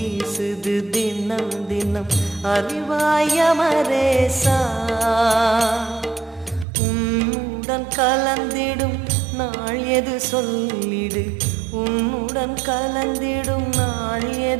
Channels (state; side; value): drops out; left; at 6.7 s